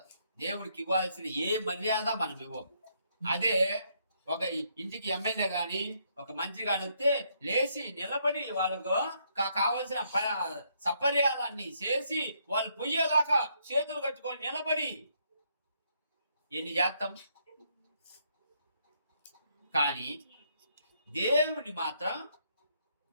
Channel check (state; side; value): inverted; both; correlation -0.73